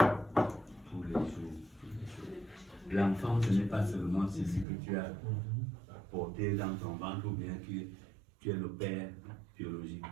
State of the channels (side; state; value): left; drops out; at 4.7 s